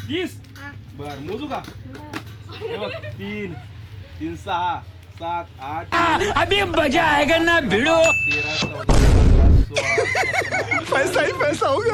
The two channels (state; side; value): identical; both; correlation 1.00